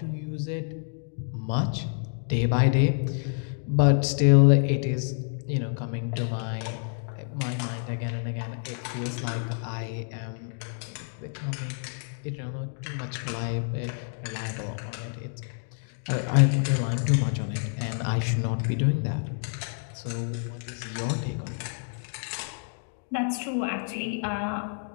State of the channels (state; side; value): silent; right; 58 dB below the other